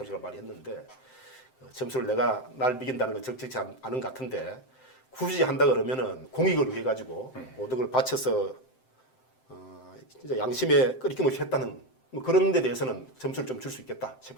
많이 했는데 점수를 내가 날 매긴다는 건 적절치 않은 것 같은데 굳이 한다 그러면은 공익을 위해 가지고 모든 걸 바쳐서 진짜 양심에 끄리낌 없이 했다는 뭐 그런 데 대해서는 점수를 좀 줄 수 있겠다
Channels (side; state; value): right; late; 7.7 ms